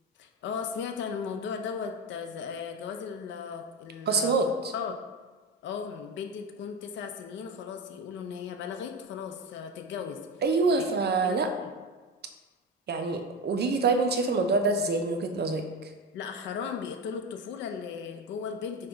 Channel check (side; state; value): both; normal; correlation 0.21